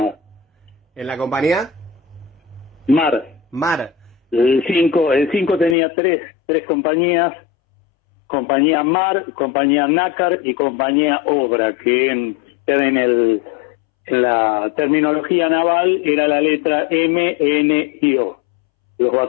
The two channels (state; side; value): drops out; right; at 5.8 s